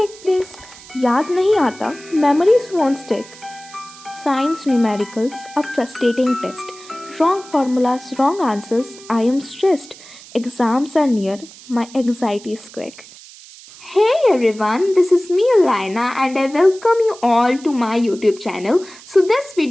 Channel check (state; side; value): noise; right; hiss, 20 dB below the sound